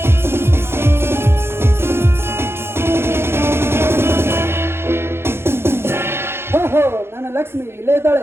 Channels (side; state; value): left; late; 0.12 ms